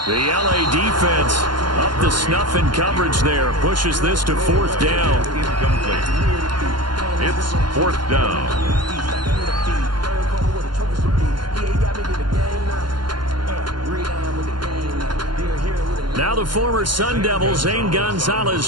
The LA defense up the snuff in coverage there. Pushes this to 4th down. Incomplete. It's 4th down. Now the former Sun Devil, Zane Gonzalez,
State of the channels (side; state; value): left; late; 0.72 ms